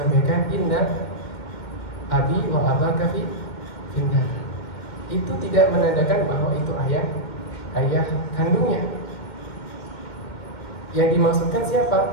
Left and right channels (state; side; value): late; right; 2.1 ms